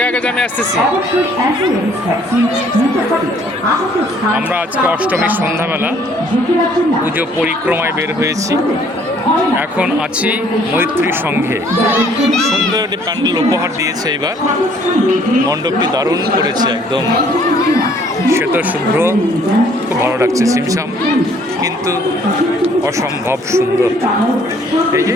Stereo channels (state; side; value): normal; both; correlation 0.60